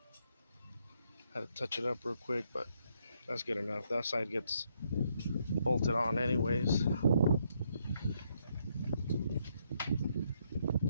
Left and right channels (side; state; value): both; inverted; correlation -0.74